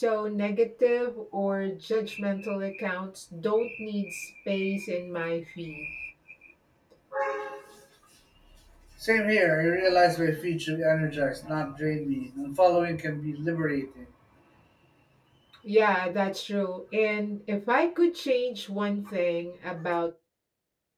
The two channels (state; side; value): identical; both; correlation 1.00